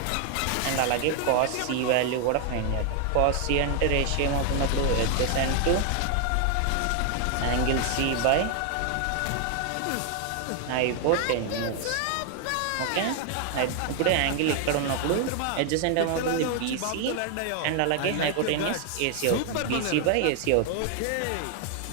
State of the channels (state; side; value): different; both; correlation 0.00